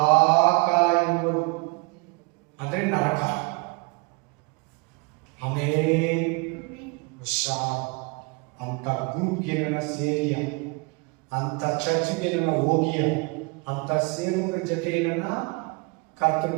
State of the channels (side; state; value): left; quieter; 30.1 dB